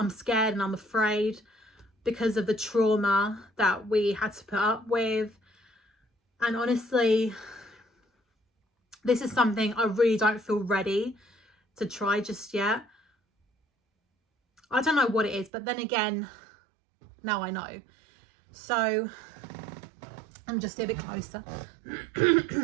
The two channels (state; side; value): drops out; left; at 15.5 s